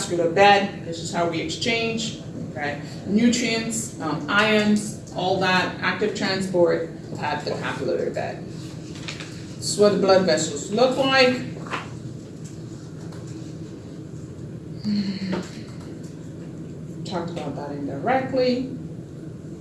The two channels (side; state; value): both; identical; correlation 1.00